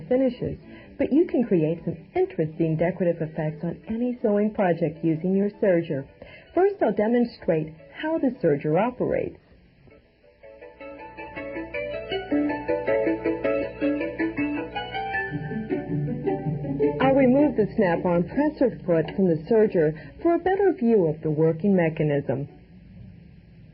finishes, but you can create some interesting decorative effects on any sewing project using your serger. First, I'll demonstrate how the serger operates. I'll remove the snap-on presser foot from the serger for a better view of the working mechanism.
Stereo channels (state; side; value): identical; both; correlation 1.00